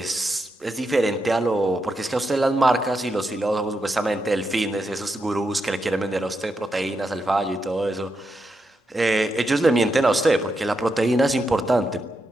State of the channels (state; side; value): normal; both; correlation 0.85